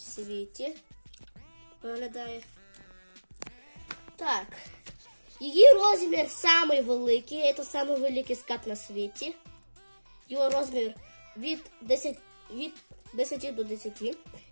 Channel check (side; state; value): both; inverted; correlation -1.00